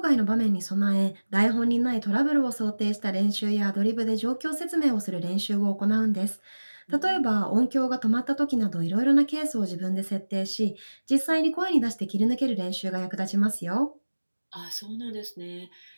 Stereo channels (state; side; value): inverted; both; correlation -1.00